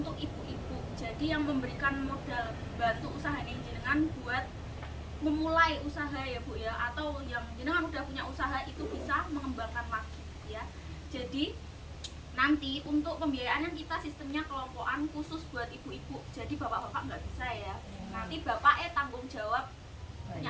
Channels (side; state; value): both; identical; correlation 1.00